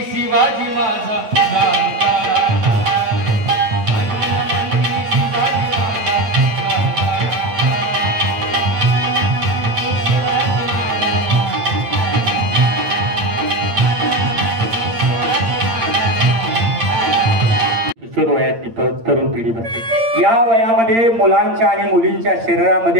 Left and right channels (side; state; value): left; late; 8.8 ms